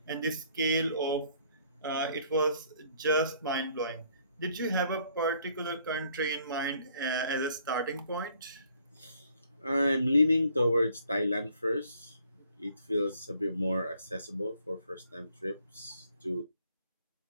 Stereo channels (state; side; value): inverted; both; correlation -0.62